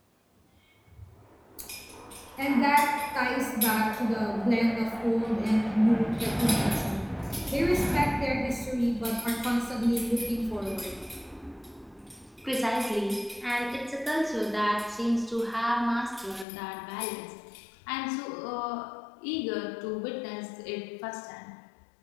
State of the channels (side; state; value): right; drops out; at 16.4 s